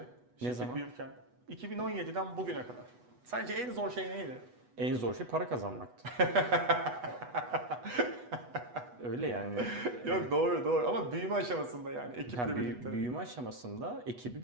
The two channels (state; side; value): late; left; 8.1 ms